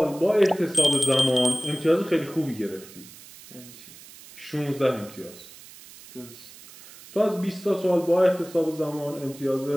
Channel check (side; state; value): right; noise; hiss, 19 dB below the sound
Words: با احتساب زمان امتیاز خیلی خوبی گرفتی. یعنی چی؟ 16 امتیاز. درست. تو از 20 تا سوال با احتساب زمان امتیاز